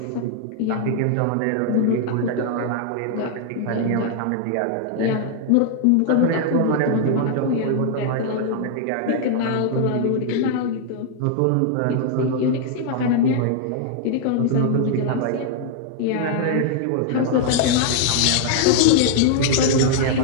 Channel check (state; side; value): different; both; correlation -0.01